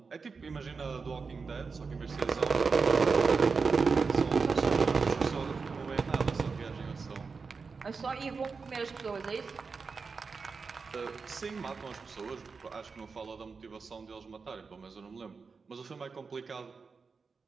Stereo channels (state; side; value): quieter; left; 4.9 dB